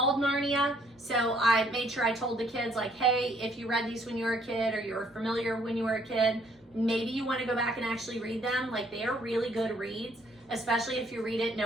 Narnia. So I made sure I told the kids, like, hey, if you read these when you were a kid or you were familiar when you were a kid, maybe you want to go back and actually read them. Like, they are really good reads, especially if you read it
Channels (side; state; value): both; normal; correlation 0.65